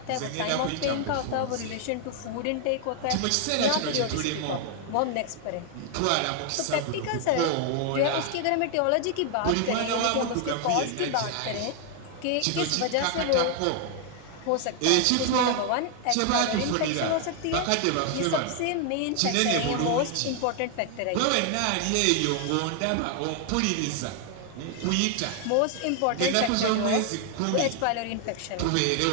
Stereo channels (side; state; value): both; different; correlation 0.00